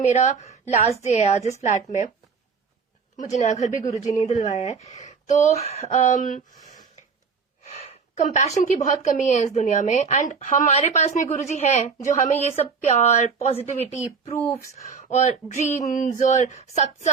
लास्ट डे है आज इस फ्लैट में। मुझे नया घर भी गुरुजी ने दिलवाया है। तो कंपैशन की बहुत कमी है इस दुनिया में, एंड हमारे पास में गुरुजी हैं जो हमें ये सब प्यार, पॉजिटिविटी, प्रूफ्स और ड्रीम्स और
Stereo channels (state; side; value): quieter; left; 5.5 dB